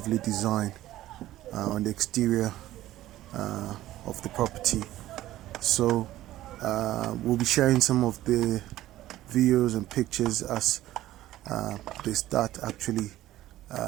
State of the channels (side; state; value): left; quieter; 14.8 dB